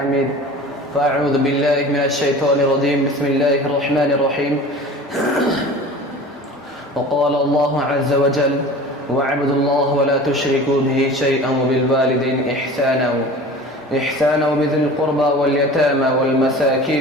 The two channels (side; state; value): both; normal; correlation 0.39